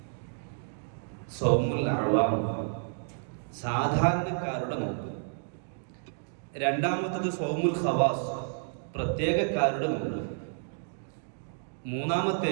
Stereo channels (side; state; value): left; silent; digital silence